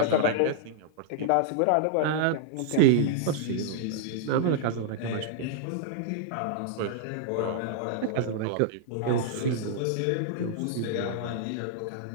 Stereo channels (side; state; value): both; different; correlation -0.01